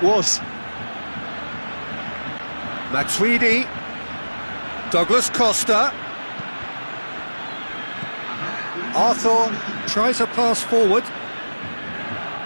was. Matuidi. Douglas Costa. Arthur tries a pass forward.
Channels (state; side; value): inverted; both; correlation -1.00